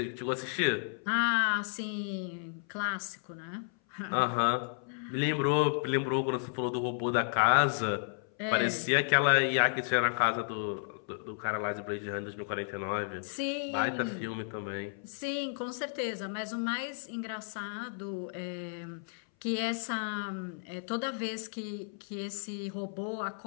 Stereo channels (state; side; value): silent; right; 56 dB below the other